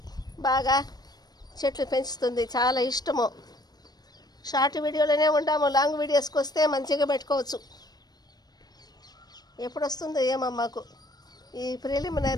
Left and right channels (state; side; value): late; right; 0.19 ms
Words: బాగా చెట్లు పెంచుతుంది, చాలా ఇష్టము. షార్ట్ వీడియోలోనే ఉంటాము, లాంగ్ వీడియోస్కి వస్తే మంచిగా పెట్టుకోవచ్చు. ఎప్పుడు వస్తుందో ఏమో మాకు ఈ